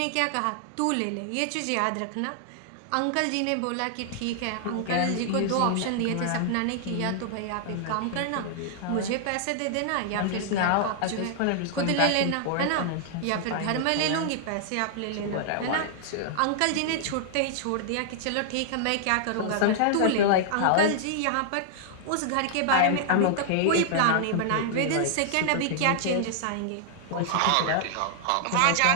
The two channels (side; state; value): both; different; correlation -0.01